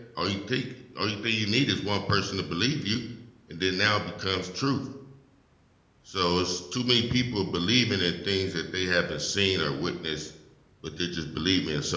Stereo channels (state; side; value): identical; both; correlation 1.00